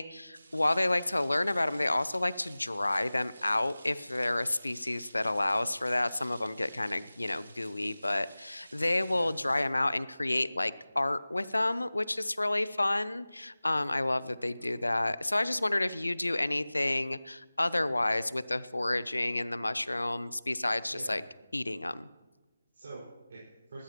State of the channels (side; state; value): both; inverted; correlation -0.99